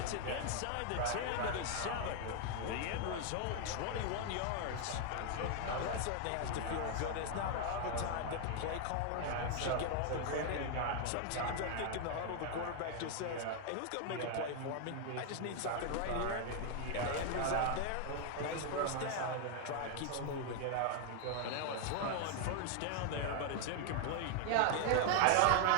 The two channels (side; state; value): both; different; correlation 0.00